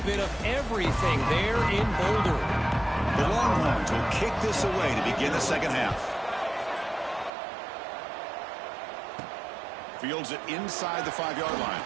of everything there in Boulder. The Longhorns will kick this away to begin the second half. Fields it inside the 5-yard line.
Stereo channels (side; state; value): left; drops out; at 7.3 s